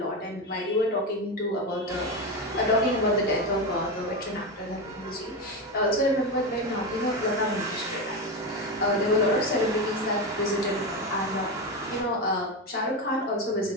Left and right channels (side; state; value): both; normal; correlation 0.16